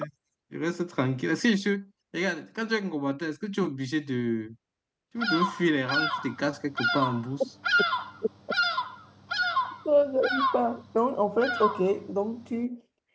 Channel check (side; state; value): both; identical; correlation 1.00